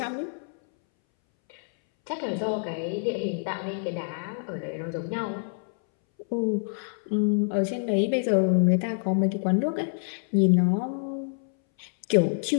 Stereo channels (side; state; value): right; silent; 60 dB below the other